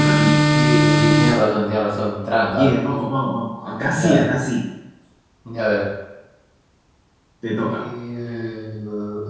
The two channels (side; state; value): both; identical; correlation 1.00